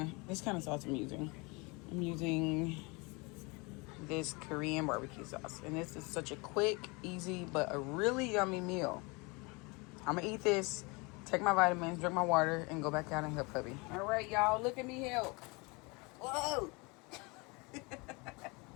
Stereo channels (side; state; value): right; quieter; 27.7 dB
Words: This kind of sauce I'm using. I'm using this Korean barbecue sauce, and this is such a quick, easy, but a really yummy meal. I'm gonna eat this, take my vitamins, drink my water, and go back out and help hubby. All right, y'all, look at me help. Whoa!